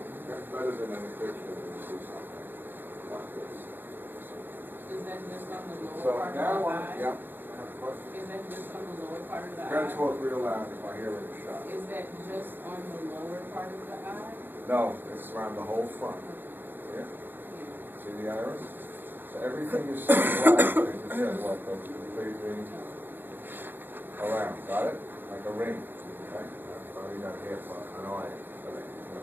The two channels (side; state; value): left; late; 0.094 ms